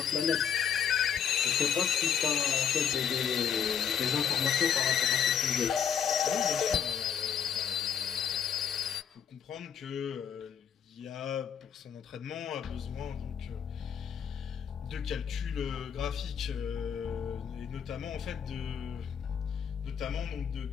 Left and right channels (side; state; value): right; quieter; 7.9 dB